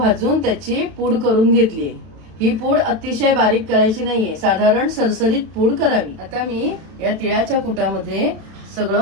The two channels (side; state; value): left; late; 32 ms